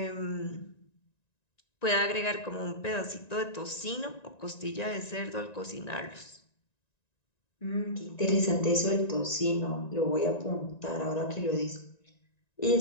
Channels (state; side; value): late; right; 1.9 ms